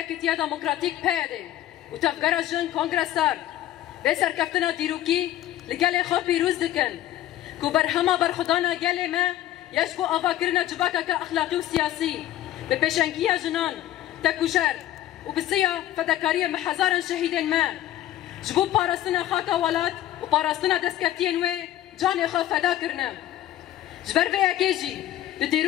یکیتیا دموکراتیک پیاده و تفکر جن کنگرسار به سرکفتنا دیروکی لگل خو پیروز دکن کو بر همه برخدانا گل ما یشبو آوا کرنا جباکا که اخلاقی و سیاسی به پیشنگی جنان تکوشر و بسیار فداکاری محزارن شهیدن ما جبو پاراستنا خاکا ولات و پاراستنا دستکفتین و جان خو فدا کرنا جبر به یکیجی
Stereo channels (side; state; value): right; quieter; 13.4 dB